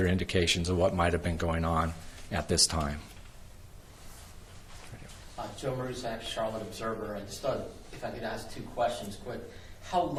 indications of what might have been going on at this time. Joe Marusak, Charlotte Observer, and just if I could ask two questions quick. How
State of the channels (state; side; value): identical; both; correlation 1.00